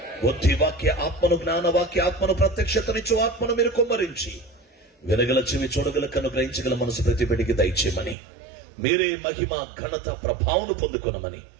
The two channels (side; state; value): left; drops out; at 8.2 s